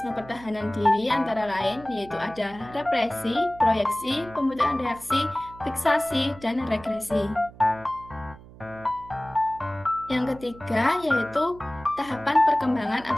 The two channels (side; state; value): right; noise; hum, 20 dB below the sound